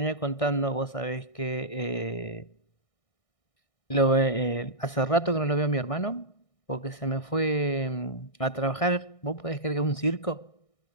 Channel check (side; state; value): right; late; 1.6 ms